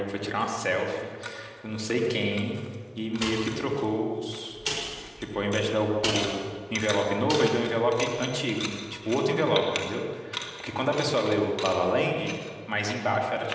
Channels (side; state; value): both; identical; correlation 1.00